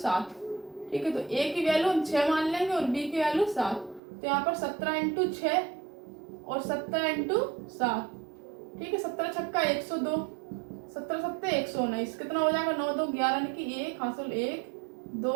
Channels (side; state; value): left; drops out; at 4.0 s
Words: ठीक है, तो ए की वैल्यू हम 6 मान लेंगे और बी की वैल्यू 7। तो यहाँ पर 17 इंटू 6 और 17 इंटू 7, ठीक है, 17 छक्का 102, 17 सत्ते 119, कितना हो जाएगा 9 2 11 यानी कि 1 हासिल 1 2